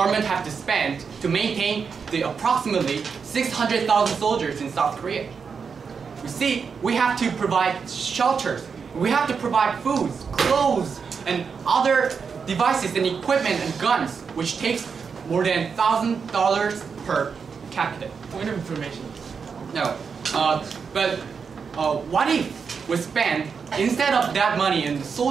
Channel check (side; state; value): left; quieter; 5.9 dB